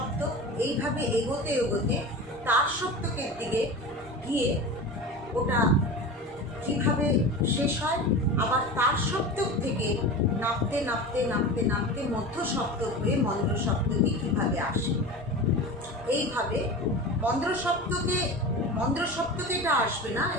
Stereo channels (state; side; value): normal; both; correlation 0.30